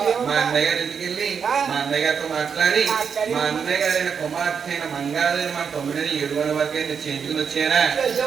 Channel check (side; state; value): left; quieter; 6.6 dB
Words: మా అన్నయ్య గారి ఇంటికి వెళ్ళి మా అన్నయ్య గారితో మాట్లాడి మా అన్నయ్య గారైన కుమార్తె అయిన మంగాదేవి మా తొమ్మిదిని 7 వరకు చేయించుకుని వచ్చారా?